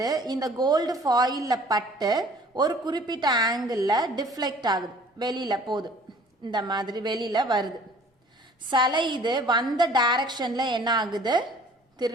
இந்த கோல்டு ஃபாயில்ல பட்டு ஒரு குறிப்பிட்ட ஆங்கிள் டிஃப்ளெக்ட் ஆகுது, வெளியில போகுது, இந்த மாதிரி வெளியில வருது. சில இது வந்த டைரக்ஷன்ல என்ன ஆகுது,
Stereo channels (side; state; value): both; normal; correlation 0.52